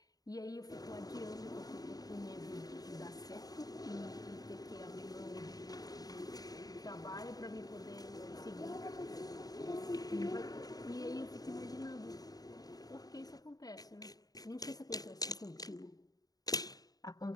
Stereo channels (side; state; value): right; late; 0.18 ms